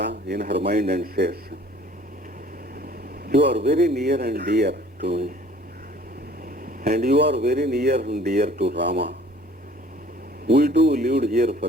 in her mind and says, you are very near and dear to me, and you are very near and dear to Rama. We too lived here for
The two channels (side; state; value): both; normal; correlation 0.53